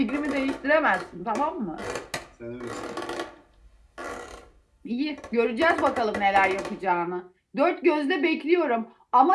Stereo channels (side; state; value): both; identical; correlation 1.00